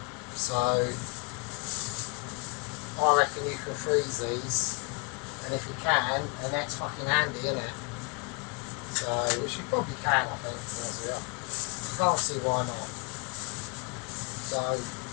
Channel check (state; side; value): quieter; right; 33.2 dB